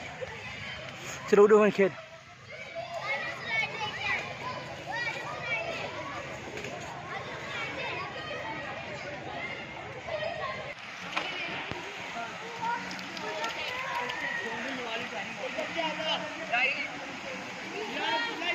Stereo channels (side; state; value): both; identical; correlation 1.00